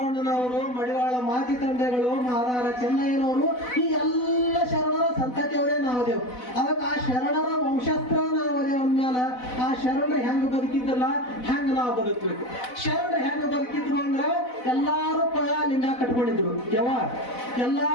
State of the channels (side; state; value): right; late; 4.0 ms